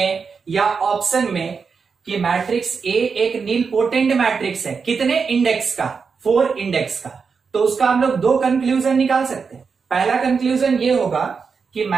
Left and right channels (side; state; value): left; quieter; 5.5 dB